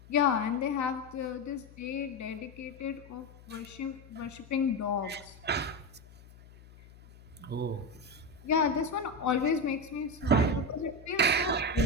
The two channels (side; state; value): left; noise; hum, 21 dB below the sound